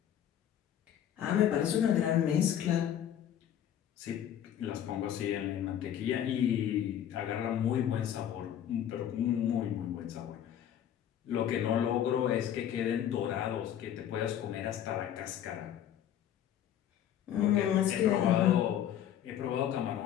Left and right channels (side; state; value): right; quieter; 10.4 dB